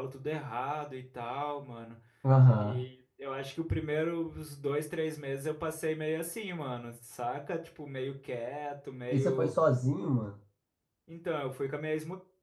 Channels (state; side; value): identical; both; correlation 1.00